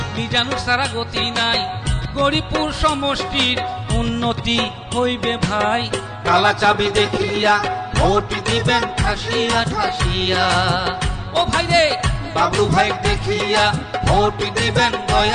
মিজানুর ছাড়া গতি নাই। গরিপুর সমষ্টির উন্নতি হইবে ভাই। কালা চাবি দেখিয়া ভোট দিবেন ঠাসিয়া ঠাসিয়া। ও ভাই রে, বাবলু ভাই দেখিয়া ভোট দিবেন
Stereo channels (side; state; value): both; identical; correlation 1.00